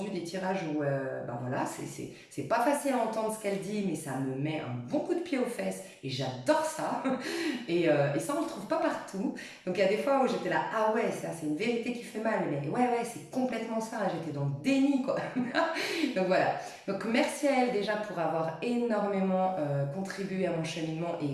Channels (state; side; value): identical; both; correlation 1.00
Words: des tirages où, bah voilà, c'est pas facile à entendre ce qu'elle dit, mais ça me met un bon coup de pied aux fesses et j'adore ça. Et ça, on le trouve pas partout. Donc il y a des fois où j'étais là, ah ouais, ça c'est une vérité qui fait mal, mais ouais, c'est complètement ça. J'étais dans le déni, quoi. Donc voilà. Donc merci à elle déjà pour avoir énormément contribué à mon cheminement